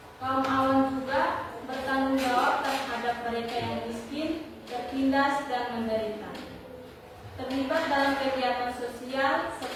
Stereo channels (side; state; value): both; identical; correlation 1.00